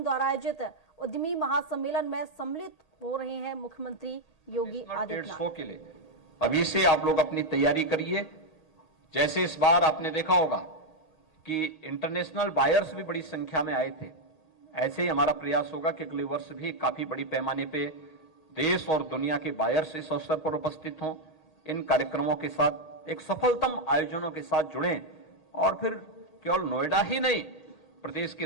द्वारा आयोजित उद्यमी महासम्मेलन में सम्मिलित हो रहे हैं मुख्यमंत्री योगी आदित्यनाथ। के लिए अभी से आप लोग अपनी तैयारी करिए। जैसे इस बार आपने देखा होगा कि इंटरनेशनल बायर्स भी बड़ी संख्या में आए थे, ऐसे ही हमारा प्रयास होगा कि अगले वर्ष भी काफी बड़ी पैमाने पे देश और दुनिया के बायर्स इस अवसर पर उपस्थित हों, इन कार्यक्रमों के साथ एक सफलतम आयोजनों के साथ जुड़ें और फिर केवल नोएडा ही नहीं, प्रदेश की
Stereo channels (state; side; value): late; right; 1.8 ms